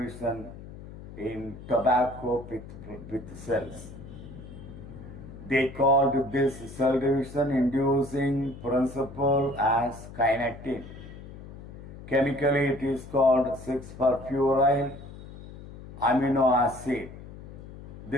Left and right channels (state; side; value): noise; left; hum, 15 dB below the sound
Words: in tobacco with cells. They called this cell division inducing principle as kinetin. Chemically it is called 6-furfuryl amino acid.